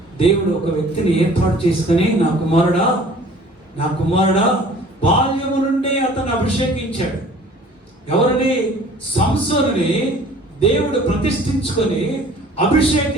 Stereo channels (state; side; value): normal; both; correlation 0.50